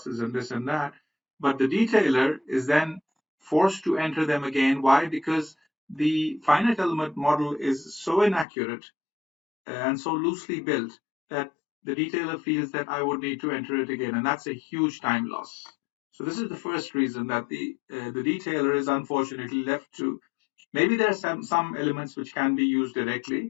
and this and that. But the detailer is then forced to enter them again. Why? Because the finite element model is so inaccurate and so loosely built that the detailer feels that I would need to enter it again, and that's a huge time loss. So this is the first reason that the detailer is unfortunately left to. Maybe there are some elements which can be used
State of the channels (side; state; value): right; drops out; at 8.5 s